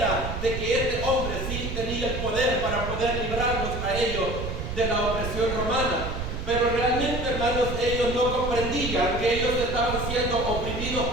de que este hombre sí tenía el poder para poder librarnos a ellos de la opresión romana. Pero realmente, hermanos, ellos no comprendían que ellos estaban siendo oprimidos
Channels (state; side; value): noise; right; rumble, 5 dB below the sound